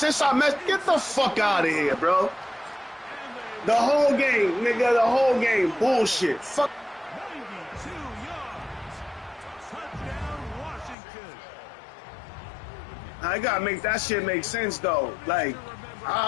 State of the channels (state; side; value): drops out; right; at 11.0 s